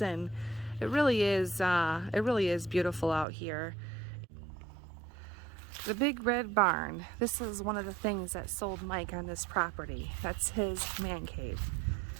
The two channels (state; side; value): drops out; left; at 3.2 s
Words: and it really is beautiful out here. The big red barn. This is one of the things that sold Mike on this property. That's his man cave.